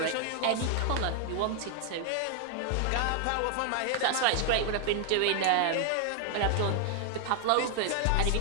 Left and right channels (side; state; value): both; different; correlation 0.00